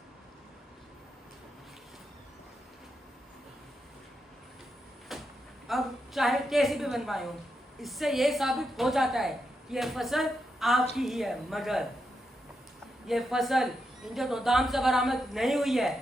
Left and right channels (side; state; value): both; normal; correlation 0.85